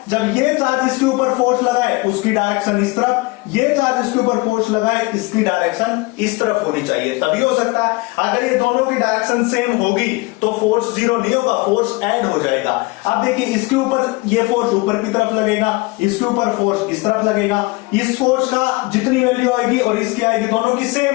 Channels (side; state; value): right; quieter; 24.0 dB